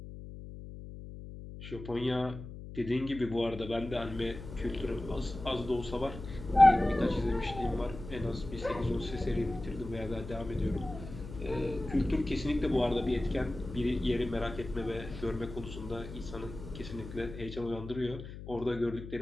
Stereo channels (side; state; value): left; noise; hum, 11 dB below the sound